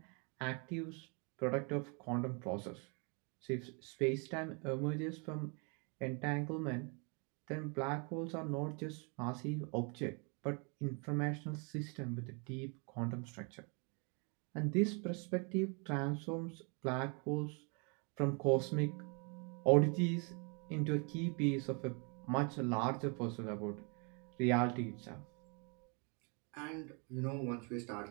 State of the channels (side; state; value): left; quieter; 35.0 dB